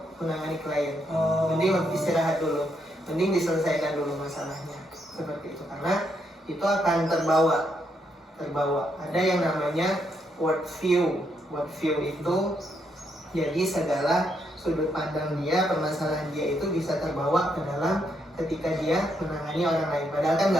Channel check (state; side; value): normal; both; correlation 0.77